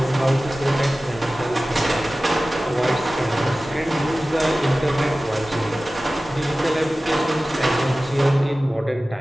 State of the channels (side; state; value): both; normal; correlation 0.97